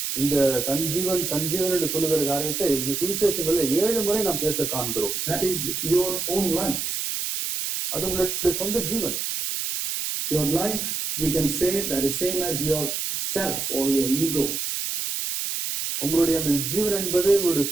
இந்த தன் ஜீவன் என்று சொல்லுகிற காரியத்தை இந்த சுவிசேஷங்கள்ல 7 முறை நாம் பேச காண்கிறோம். That is your own life. அது உங்களுடைய சொந்த ஜீவன். Your life, we can say that is same as your self or your ego. உங்களுடைய அந்த ஜீவன் என்பது உங்களுடைய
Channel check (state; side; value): noise; right; hiss, 2 dB below the sound